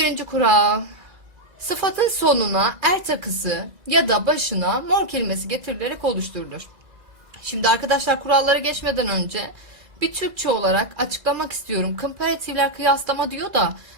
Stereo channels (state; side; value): late; left; 2.0 ms